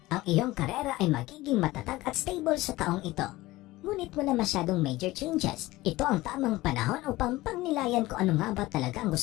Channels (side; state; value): right; quieter; 18.6 dB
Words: Ang iyong karera ay magiging matatag at stable sa taong ito. Ngunit wala masyadong major changes. Ito ang tamang panahon upang pagnilayan kung ano nga ba talaga ang